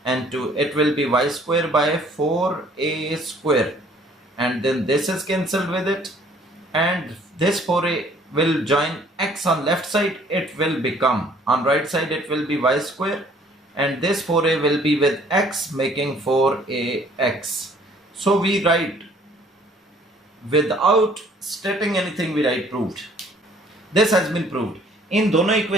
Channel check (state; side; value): normal; both; correlation 0.58